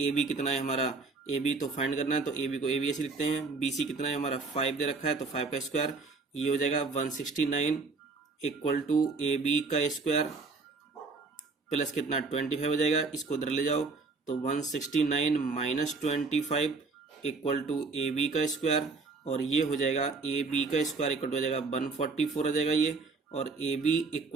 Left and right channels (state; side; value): quieter; left; 4.1 dB